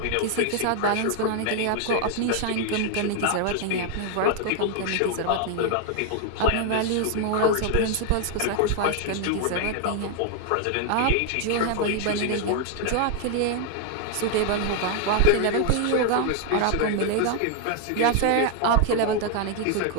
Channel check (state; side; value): different; both; correlation 0.00